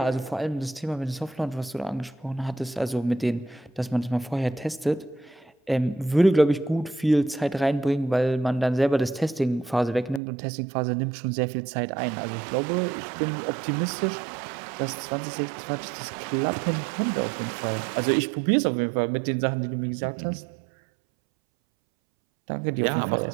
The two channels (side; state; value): left; drops out; at 10.2 s